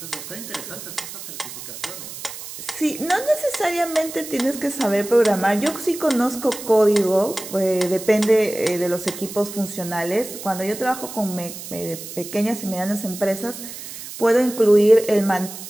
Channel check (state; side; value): noise; right; hiss, 11 dB below the sound